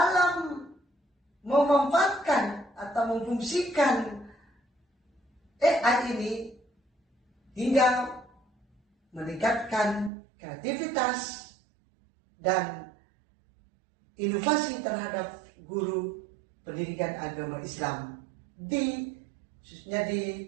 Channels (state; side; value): drops out; left; at 10.1 s